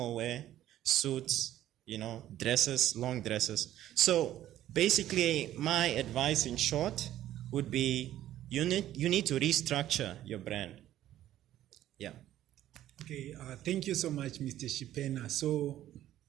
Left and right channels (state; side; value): quieter; left; 12.9 dB